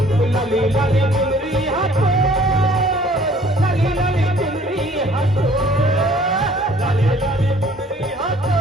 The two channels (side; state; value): both; normal; correlation 0.56